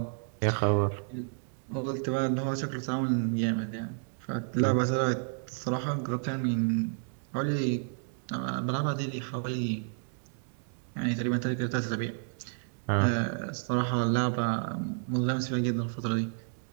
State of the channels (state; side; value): silent; left; digital silence